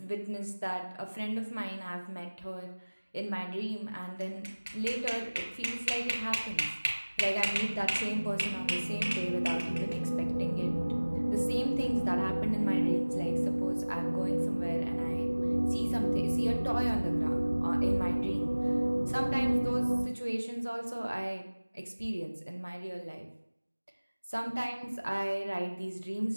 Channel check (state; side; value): inverted; both; correlation -1.00